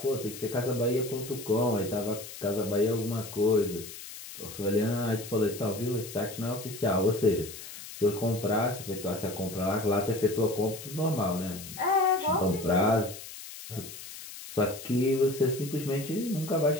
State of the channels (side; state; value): left; noise; hiss, 13 dB below the sound